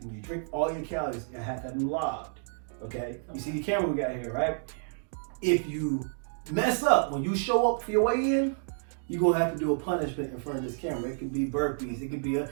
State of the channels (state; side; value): silent; left; digital silence